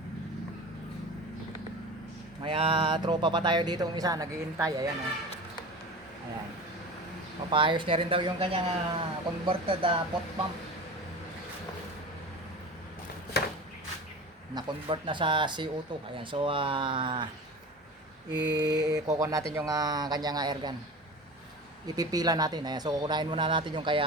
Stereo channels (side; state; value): both; normal; correlation 0.33